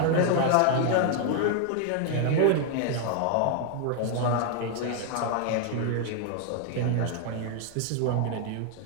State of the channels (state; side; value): different; both; correlation 0.00